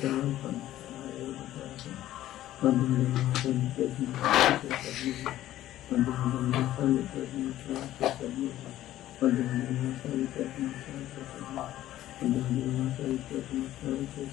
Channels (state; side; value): quieter; right; 13.7 dB